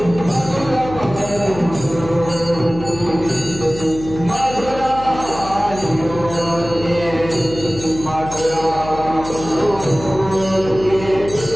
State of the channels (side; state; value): left; noise; hum, 12 dB below the sound